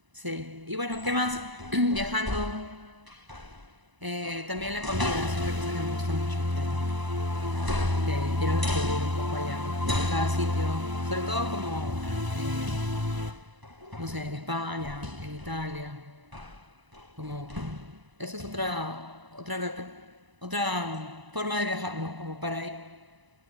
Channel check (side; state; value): left; late; 1.0 ms